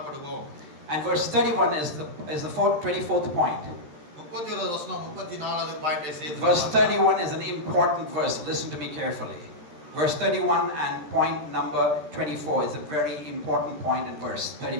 And verse 31 is the 24th point. 31வது வசனம் 34வது பாயிண்டை சேர்த்து. Verse 31 is an important verse. Listen to me carefully. Verse 31 and point number 24 is a very important point in verse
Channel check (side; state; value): left; late; 13 ms